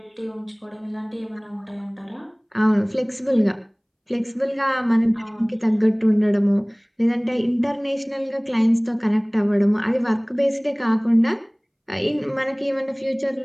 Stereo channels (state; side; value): identical; both; correlation 1.00